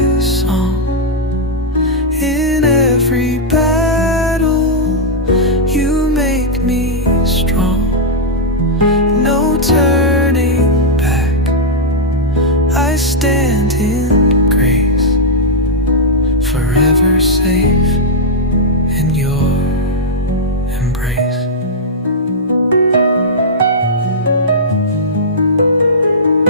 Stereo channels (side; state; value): both; normal; correlation -0.07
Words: song. In every battle, you make me strong. No turning back, I stand in grace, forever safe in your embrace.